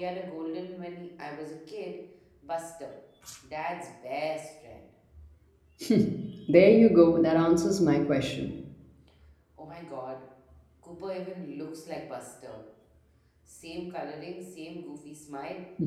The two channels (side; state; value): both; identical; correlation 1.00